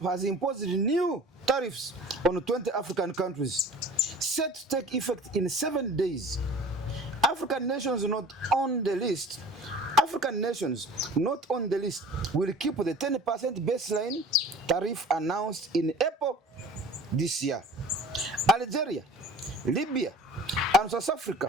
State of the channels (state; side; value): normal; both; correlation 0.43